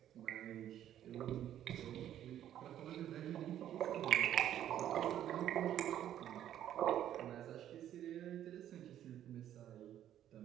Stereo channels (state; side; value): quieter; left; 11.2 dB